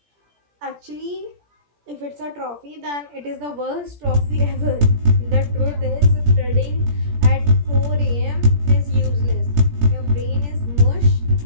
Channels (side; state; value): left; late; 17 ms